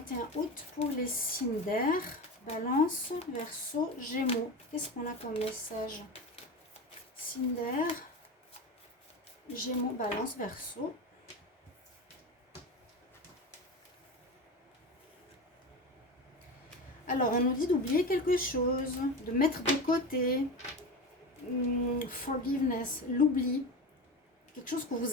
août pour les signes d'air. Balance, Verseau, Gémeaux. Qu'est-ce qu'on a comme message? Signe d'air, Gémeaux, Balance, Verseau. Alors, on nous dit d'oublier quelque chose, de mettre de côté. Forgiveness, l'oubli. Quelque chose que vous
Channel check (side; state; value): both; normal; correlation 0.25